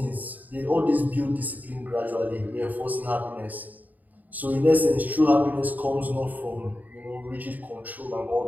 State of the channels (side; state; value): left; late; 0.081 ms